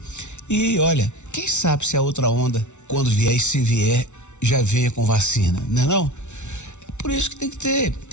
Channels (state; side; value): late; right; 0.83 ms